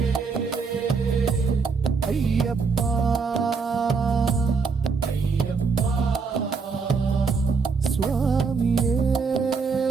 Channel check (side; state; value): left; quieter; 5.0 dB